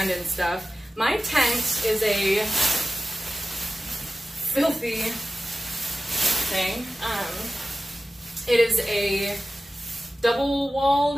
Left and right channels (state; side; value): normal; both; correlation 0.95